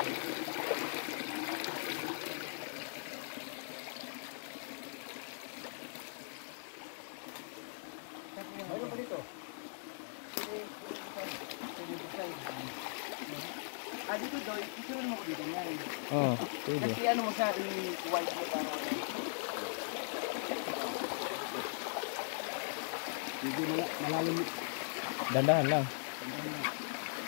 Mayroon pa dito. Dito daw, isunan mo ko dito yan. Oo, pwede. Kasi ano mo siya, i-wipe mo para... Hindi malalim. Dandahan lang.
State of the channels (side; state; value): right; silent; digital silence